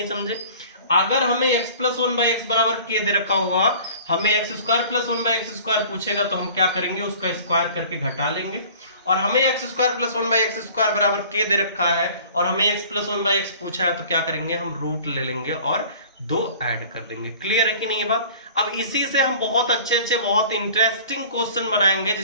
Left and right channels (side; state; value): both; inverted; correlation -0.47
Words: समझे? अगर हमें x plus one by x बराबर k दे रखा होगा, हमें x square plus one by x square पूछेगा तो हम क्या करेंगे? उसका स्क्वायर करके घटा लेंगे। और हमें x square plus one by x square बराबर k दे रखा है और हमें x plus one by x पूछा है तो क्या करेंगे? हम रूट ले लेंगे और 2 ऐड कर देंगे। क्लियर है कि नहीं ये बात? अब इसी से हम बहुत अच्छे बहुत इंटरेस्टिंग क्वेश्चन बनाएंगे